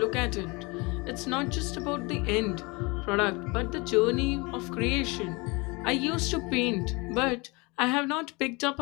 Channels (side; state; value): right; quieter; 26.6 dB